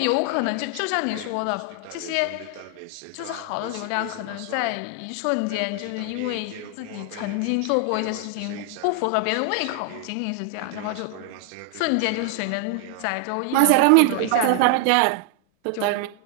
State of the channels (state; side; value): different; both; correlation 0.00